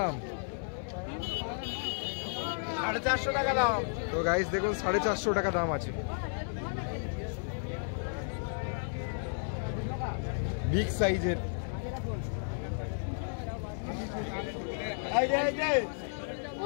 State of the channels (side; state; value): right; silent; 56 dB below the other